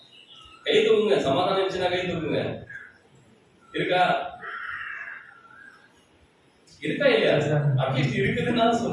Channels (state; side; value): identical; both; correlation 1.00